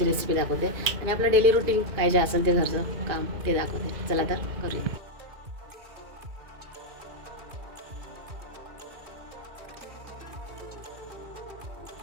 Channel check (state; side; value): late; left; 2.4 ms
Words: रेसिपी दाखवते आणि आपलं डेली रुटीन काय जे असेल ते घरचं काम ते दाखवते. चला तर करूया.